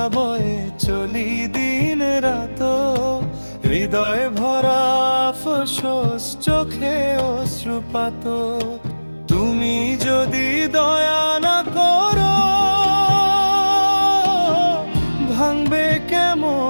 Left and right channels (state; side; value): inverted; both; correlation -1.00